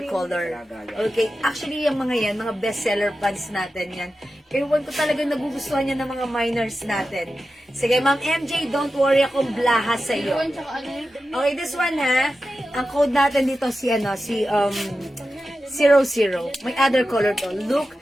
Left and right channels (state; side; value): normal; both; correlation 0.92